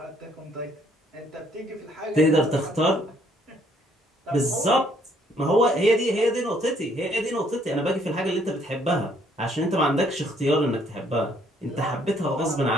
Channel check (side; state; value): both; normal; correlation 0.65